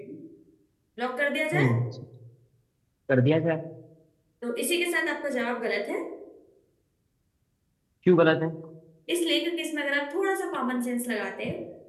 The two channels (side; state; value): both; identical; correlation 1.00